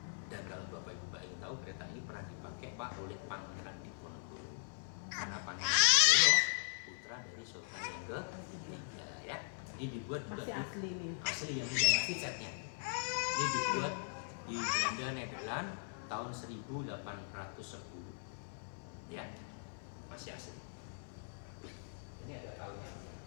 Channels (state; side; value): silent; right; 51 dB below the other